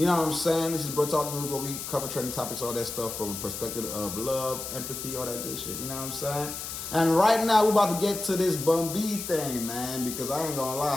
know what I'm saying? This is Bruh Talk News where we cover trending topics, all that stuff from a perspective of love, empathy, all that good shit. You know what I'm saying? And right now, we're about to get to this Bun B thing, man, because I ain't gonna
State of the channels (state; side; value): noise; left; hiss, 7 dB below the sound